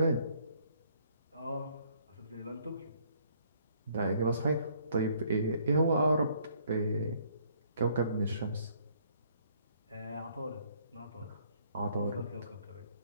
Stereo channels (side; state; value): both; inverted; correlation -0.64